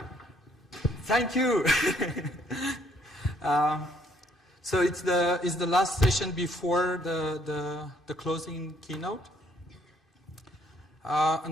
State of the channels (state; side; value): normal; both; correlation 0.65